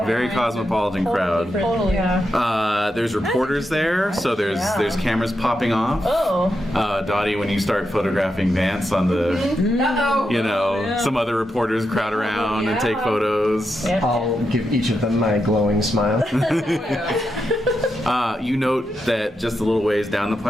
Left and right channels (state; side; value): normal; both; correlation 0.85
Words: Very cosmopolitan crowd. Totally. Yeah. There's reporters there, so there's cameras popping off. Oh. Dottie, when you start photographing Vance on the, Uh-oh. some other reporters crowd around and take photos. Yeah. I'll give each of them my glowing smile. You note that just a little ways down the